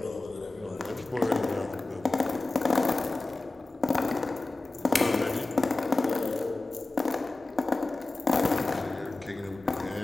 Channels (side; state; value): right; quieter; 3.2 dB